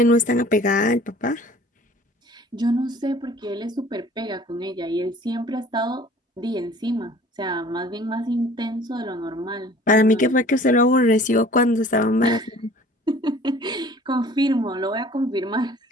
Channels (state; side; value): normal; both; correlation 0.49